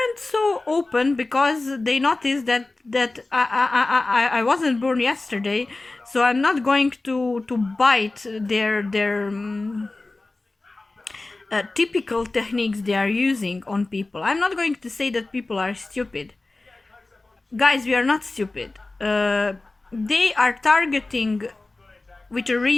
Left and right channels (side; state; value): right; quieter; 3.2 dB